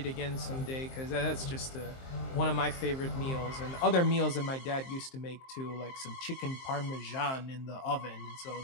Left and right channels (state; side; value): late; right; 23 ms